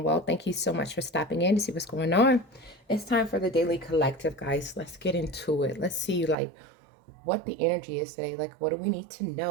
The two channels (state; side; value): drops out; left; at 6.4 s